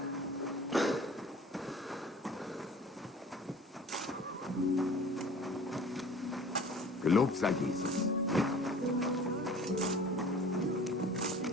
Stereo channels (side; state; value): both; normal; correlation 0.45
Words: Gelobt sei Jesus.